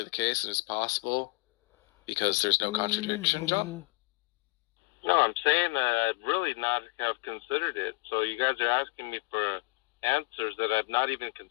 the case and it's possible because there's no contradiction, John? No, I'm saying that I'd really not have considered it. So you guys are asking me for answers that I've not even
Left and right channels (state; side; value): quieter; right; 27.4 dB